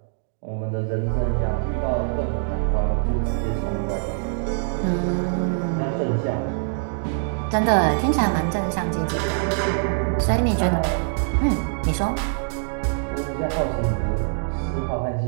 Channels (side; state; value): left; silent; digital silence